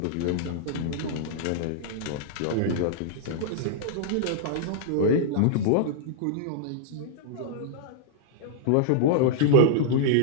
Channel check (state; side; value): different; both; correlation -0.02